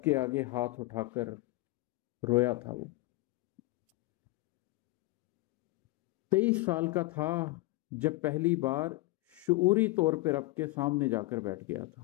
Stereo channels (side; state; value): right; quieter; 20.4 dB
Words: کے آگے ہاتھ اٹھا کر رویا تھا وہ۔ 23 سال کا تھا جب پہلی بار شعوری طور پہ رب کے سامنے جا کر بیٹھ گیا